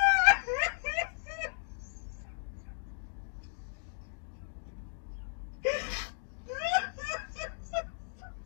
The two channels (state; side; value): silent; right; digital silence